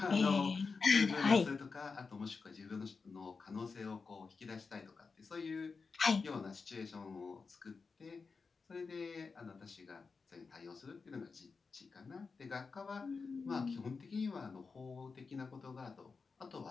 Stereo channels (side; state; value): right; quieter; 4.7 dB